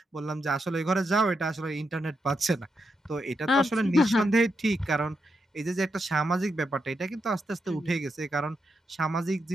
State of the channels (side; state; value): both; normal; correlation 0.84